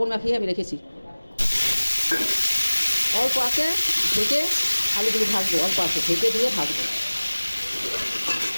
মাখিয়ে আমি রেখেছি। অল্প আছে ঢেকে আলুগুলো ভাজবো, অল্প আছে ঢেকে দিয়ে ভাজবো।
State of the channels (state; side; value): inverted; both; correlation -1.00